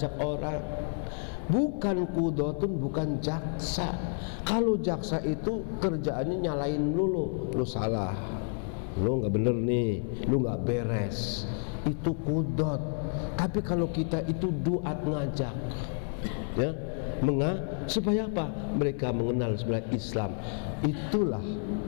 orang, bukan qudatun, bukan jaksa. Kalau jaksa itu kerjaannya nyalain lu salah, lu nggak bener nih, lu nggak beres, itu kudot. Tapi kalau kita itu duat, ngajak, ya, supaya apa? Mereka mengenal sebenarnya Islam. Itulah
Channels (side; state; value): right; silent; 55 dB below the other